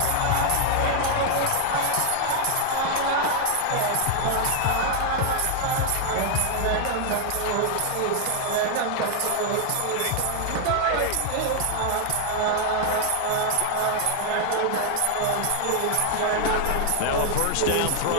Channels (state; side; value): different; both; correlation 0.00